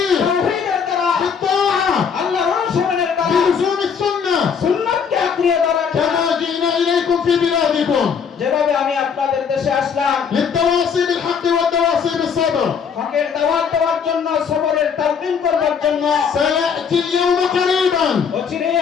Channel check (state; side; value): quieter; right; 6.6 dB